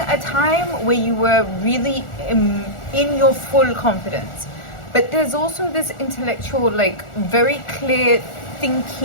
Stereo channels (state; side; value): late; right; 1.4 ms